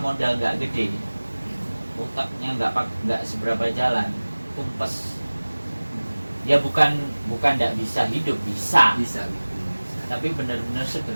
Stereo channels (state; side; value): inverted; both; correlation -1.00